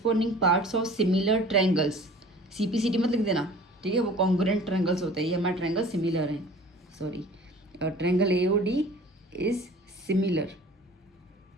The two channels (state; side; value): normal; both; correlation 0.45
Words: parts of similar triangles, CPCT मत लिख देना, ठीक है, वो congruent triangles होते हैं, ये हमारे triangle similar हैं, sorry triangle AOD is similar,